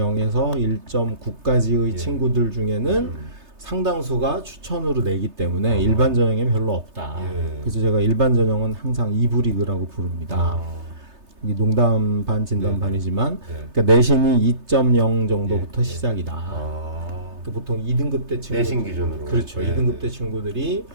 1.9까지의 예. 친구들 중에는 상당수가 추천으로 내기 때문에 일반 전형에 별로 없다. 예. 그래서 제가 일반 전형은 항상 2부 리그라고 부릅니다. 이게 농담 반 진담 네. 반이지만 네. 그러니까 내신이 2.0 정도부터 예. 시작이다. 그러니까 보통 2등급 대 친구 내신 기준으로. 그렇죠. 네. 2등급 대 친구들이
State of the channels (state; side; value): late; left; 3.3 ms